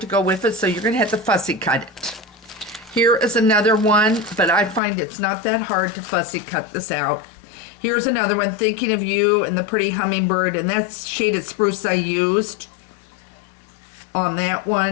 go with it, so you're going to have to fussy cut it. Here is another one, but I find it's not that hard to fussy cut this out. Here's another one, Thinking of You and the Pretty Hummingbird, and that's shaded spruce I used on that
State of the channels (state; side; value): drops out; right; at 4.8 s